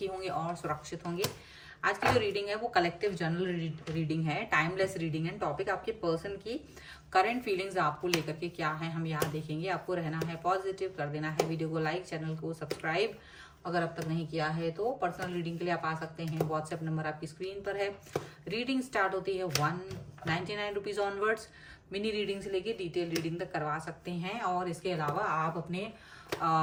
होंगे और सुरक्षित होंगे। आज की जो रीडिंग है वो कलेक्टिव जनरल रीडिंग है, टाइमलेस रीडिंग है। टॉपिक आपके पर्सन की करंट फीलिंग्स आपको लेकर के क्या है हम यहाँ देखेंगे। आपको रहना है पॉजिटिव, कर देना है वीडियो को लाइक, चैनल को सब्सक्राइब अगर अब तक नहीं किया है तो। पर्सनल रीडिंग के लिए आप आ सकते हैं, व्हाट्सएप नंबर आपकी स्क्रीन पर है। रीडिंग स्टार्ट होती है 199 रुपीज ऑनवर्ड्स। मिनी रीडिंग से लेके डिटेल रीडिंग तक करवा सकते हैं। और इसके अलावा आप अपने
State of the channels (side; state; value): both; identical; correlation 1.00